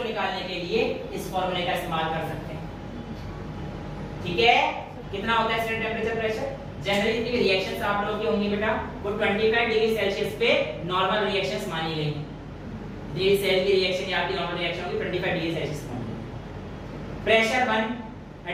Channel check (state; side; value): identical; both; correlation 1.00